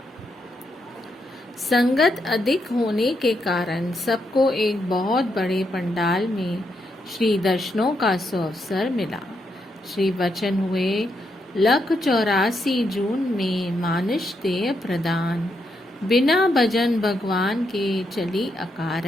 संगत अधिक होने के कारण सबको एक बहुत बड़े पंडाल में श्री दर्शनों का सुअवसर मिला। श्री वचन हुए 184 जून में मानुष देह प्रदान, बिना भजन भगवान के चली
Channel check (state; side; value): normal; both; correlation 0.80